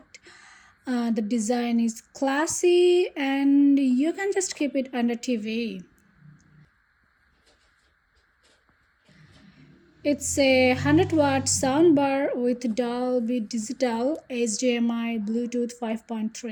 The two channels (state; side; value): identical; both; correlation 1.00